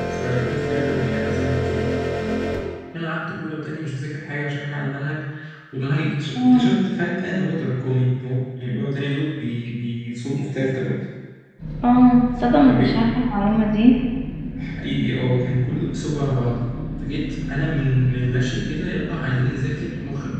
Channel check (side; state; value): both; identical; correlation 1.00